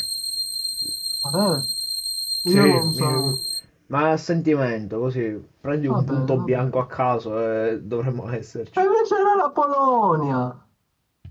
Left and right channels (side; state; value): both; identical; correlation 1.00